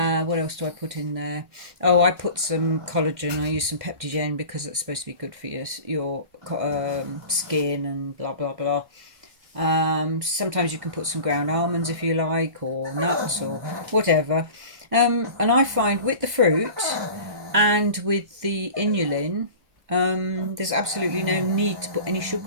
else do I put in there? Oh, I put some collagen. I use some Peptigen because it's supposed to be good for your skin and blah blah blah. Sometimes you can put some ground almonds if you like, or nuts or whatever. And I find with the fruit and with the inulin, there's absolutely no need to put any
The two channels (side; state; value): left; late; 1.6 ms